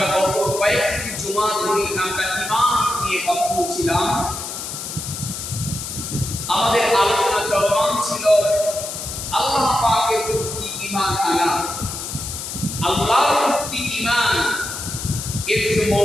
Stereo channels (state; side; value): noise; left; hiss, 7 dB below the sound